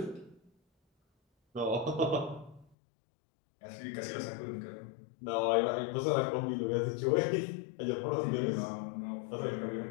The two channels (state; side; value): drops out; right; at 2.7 s